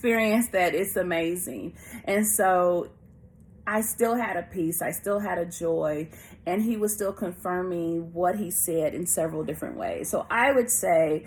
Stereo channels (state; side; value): identical; both; correlation 1.00